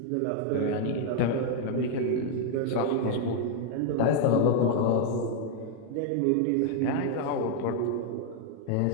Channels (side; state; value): both; different; correlation 0.00